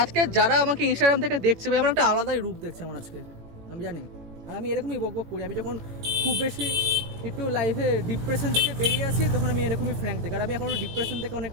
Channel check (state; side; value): late; left; 18 ms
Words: আজকে যারা আমাকে ইনস্টাগ্রাম থেকে দেখছে, ভাই আমার একটা আলাদাই রূপ দেখছে আমার আজকে, আমি জানি। আর আমি এরকমই বকবক করি। আমি যখন খুব বেশি একটু লাইফে ডিপ্রেশন থেকে বেরিয়ে আসি, তখন আমি এরকমই ফ্র্যাঙ্ক দেখি। আর আমি এখন ডিপ্রেশন থেকে